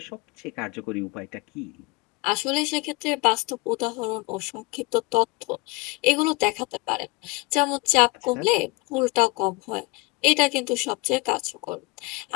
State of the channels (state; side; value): quieter; right; 24.3 dB